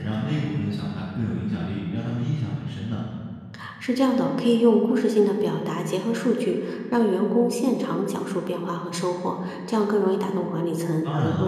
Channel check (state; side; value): identical; both; correlation 1.00